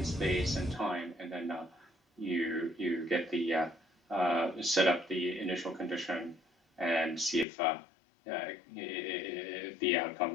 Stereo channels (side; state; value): right; drops out; at 7.5 s